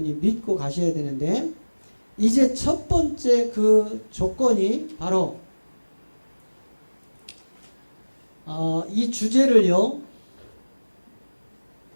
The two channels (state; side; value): inverted; both; correlation -1.00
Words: 믿고 가셔야 되는데, 이제 첫 번째 그 조건이 바로 이 주제를요,